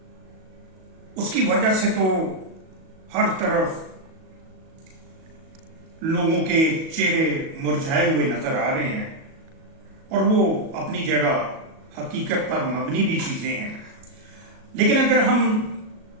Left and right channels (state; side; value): late; left; 37 ms